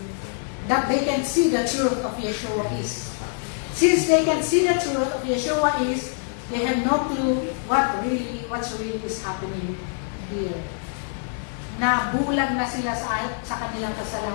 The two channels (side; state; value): right; silent; 62 dB below the other